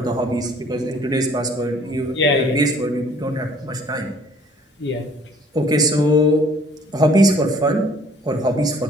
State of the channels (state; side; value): normal; both; correlation 0.56